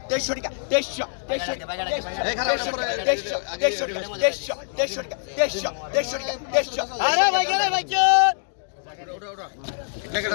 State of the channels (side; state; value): right; silent; digital silence